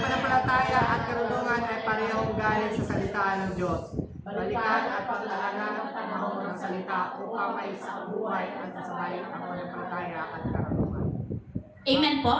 at karunungan ay parehong galing sa salita ng Diyos. Balikan at paglalagyan ng panahon ng salita upang may isang buhay at sasabay ang pananampalataya at karunungan. Amen po?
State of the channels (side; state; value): both; identical; correlation 1.00